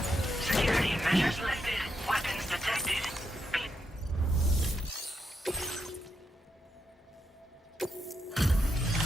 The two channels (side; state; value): both; normal; correlation 0.83